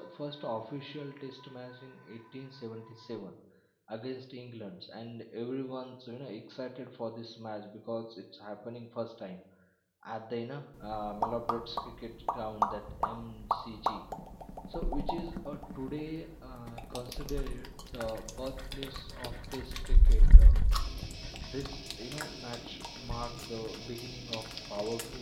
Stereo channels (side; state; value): both; identical; correlation 1.00